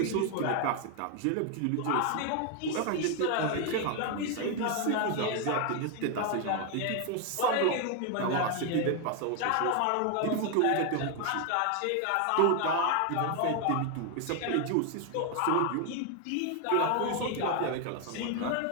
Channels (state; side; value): different; both; correlation 0.01